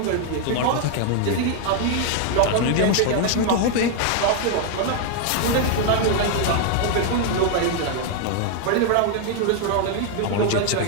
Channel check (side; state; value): both; different; correlation 0.00